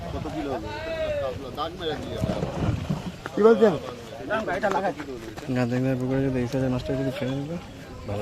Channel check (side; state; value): both; identical; correlation 1.00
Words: কত কিলো হবে? দাগ মেরে দিয়ে কি বলছেন? গাঁদাইদার পুকুরে যদি এই সাইজের মাছটা যদি ফেলে দিবে